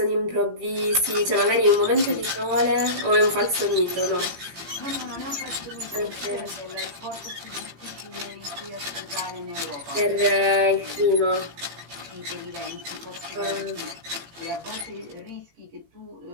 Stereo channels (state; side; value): late; left; 18 ms